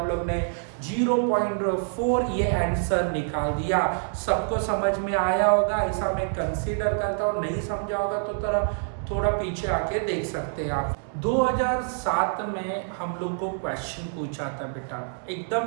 लोग ने 0.4 ये आंसर निकाल दिया। सबको समझ में आया होगा, ऐसा मैं कंसीडर करता हूँ। नहीं समझा होगा तो थोड़ा पीछे आके देख सकते हैं आप। 2007 में हम लोग को क्वेश्चन पूछा था बेटा,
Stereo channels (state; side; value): silent; left; digital silence